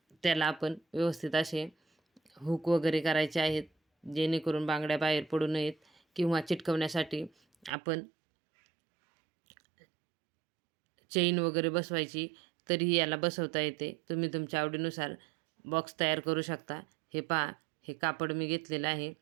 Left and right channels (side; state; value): left; drops out; at 7.7 s